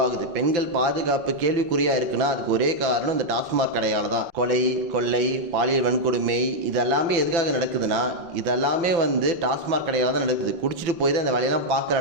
பெண்கள் பாதுகாப்பு கேள்விக்குறியாக இருக்குன்னா அதுக்கு ஒரே காரணம் இந்த டாஸ்மாக் கடையால் தான். கொலை, கொள்ளை, பாலியல் வன்கொடுமை இதெல்லாமே எதுக்காக நடக்குதுன்னா இதெல்லாமே டாஸ்மாக் கடையால் தான் நடக்குது. குடிச்சிட்டு போய் தான் இந்த வேலையெல்லாம்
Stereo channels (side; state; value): left; late; 5.9 ms